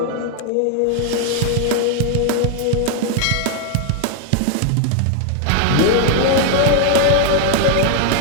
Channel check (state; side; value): different; both; correlation 0.00